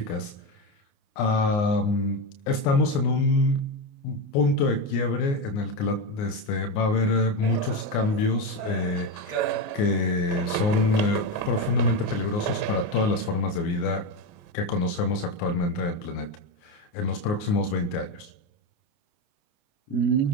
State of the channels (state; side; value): late; right; 29 ms